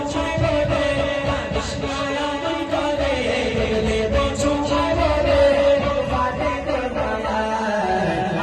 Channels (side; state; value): both; identical; correlation 1.00